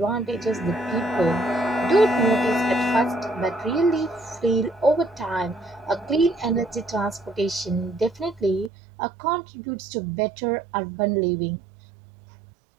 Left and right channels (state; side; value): drops out; left; at 8.7 s